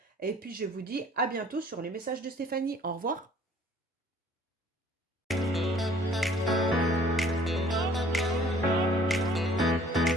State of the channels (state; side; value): normal; both; correlation 0.55